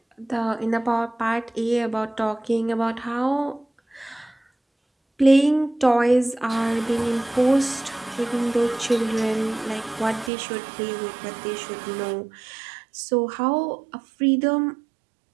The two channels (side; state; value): left; drops out; at 10.3 s